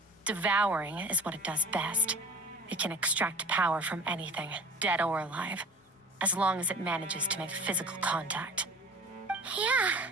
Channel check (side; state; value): both; normal; correlation 0.41